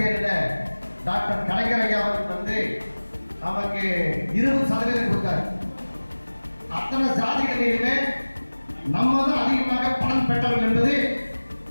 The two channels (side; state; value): both; inverted; correlation -1.00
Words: டாக்டர் கலைஞர் ஐயா அவர்கள் வந்து நமக்கு 20% கொடுத்தார். அத்தனை ஜாதிகளிலுமே நம்ம தான் அதிகமாக பலன் பெற்றவர்கள் என்பது